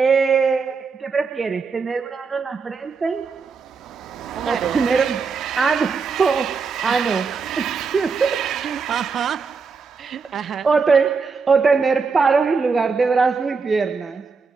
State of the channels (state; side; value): quieter; left; 5.1 dB